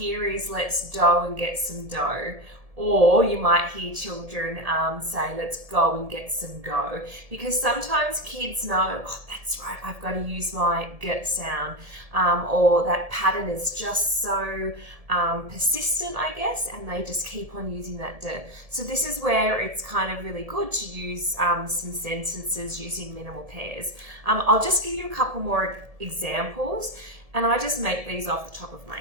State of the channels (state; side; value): late; left; 1.7 ms